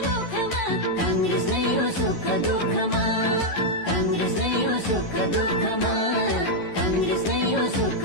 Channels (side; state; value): right; late; 11 ms